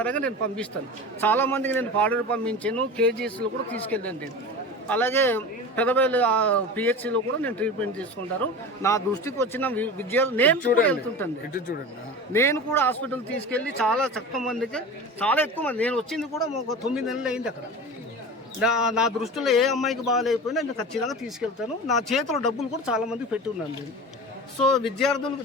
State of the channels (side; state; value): both; normal; correlation 0.32